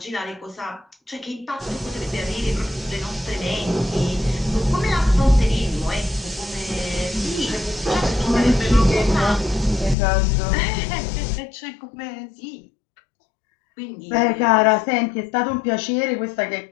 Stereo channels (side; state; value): right; drops out; at 10.0 s